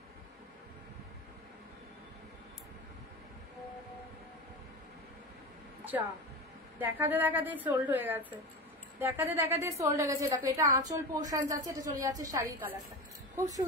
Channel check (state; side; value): normal; both; correlation 0.25